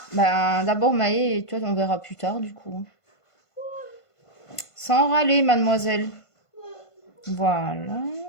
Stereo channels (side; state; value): right; late; 1.5 ms